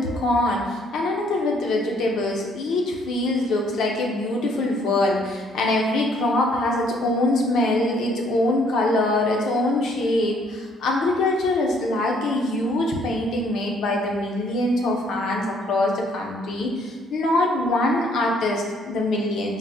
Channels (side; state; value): both; normal; correlation 0.64